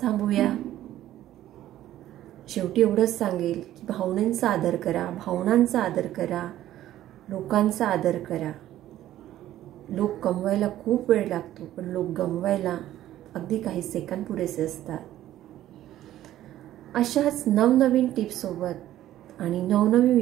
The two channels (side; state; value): left; quieter; 13.3 dB